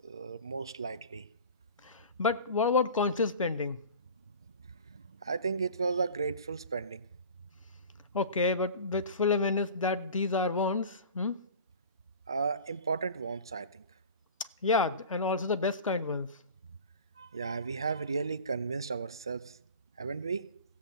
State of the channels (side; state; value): both; inverted; correlation -0.38